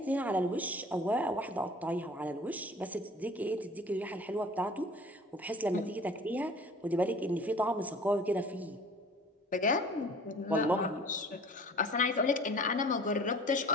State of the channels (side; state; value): both; normal; correlation 0.47